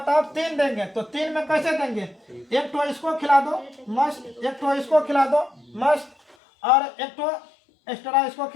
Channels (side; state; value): right; drops out; at 6.4 s